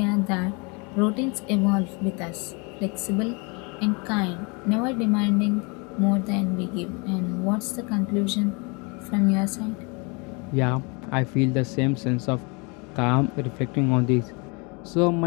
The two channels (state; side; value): quieter; right; 30.8 dB